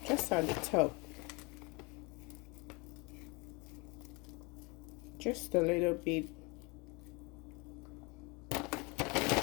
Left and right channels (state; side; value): quieter; right; 28.1 dB